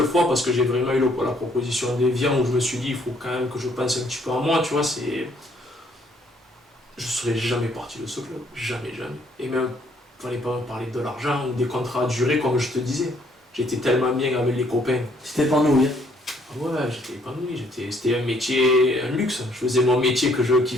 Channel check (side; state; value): both; normal; correlation 0.66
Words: fois, parce que j'ai vraiment eu la proposition d'Evian où je me suis dit, il faut quand même que je pense un petit peu à moi, tu vois, je serais jamais parti de ce club, jamais. Et même, il ne fallait pas me parler de l'argent ou des contrats à durée, comme je te disais. J'étais tellement bien avec les copains. C'était épanoui. Ouais, j'étais épanoui, c'était un métier, un luxe. Je faisais mon métier que je